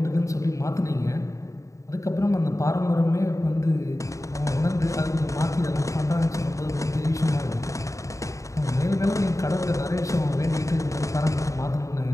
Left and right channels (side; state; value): right; late; 0.15 ms